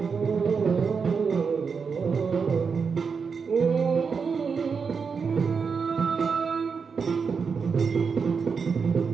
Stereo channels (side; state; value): left; quieter; 5.6 dB